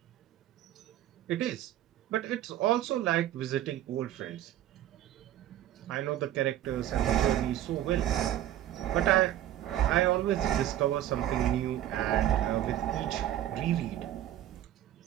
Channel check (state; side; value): quieter; left; 12.5 dB